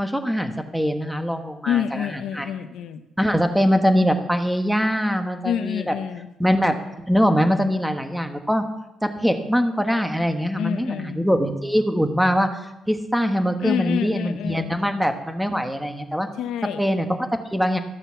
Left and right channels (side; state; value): both; normal; correlation 0.92